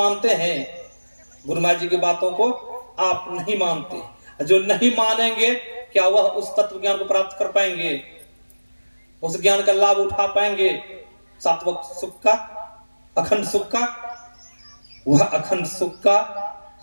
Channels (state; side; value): inverted; both; correlation -1.00